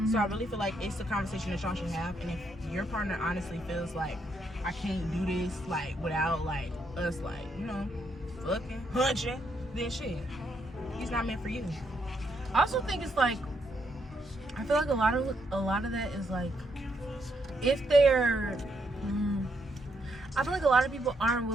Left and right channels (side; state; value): both; normal; correlation 0.76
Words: So I really feel like it's a conversation that y'all should have, and if your partner honestly feels like, I can't do this like without like us like, you know, fucking hunching, then shit, he's not meant for you. I also think it's like, I feel like a lot of that is like, if they're I feel like a lot of people aren't